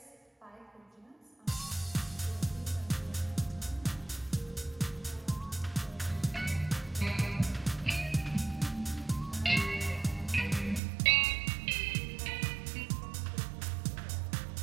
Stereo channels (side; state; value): left; drops out; at 10.8 s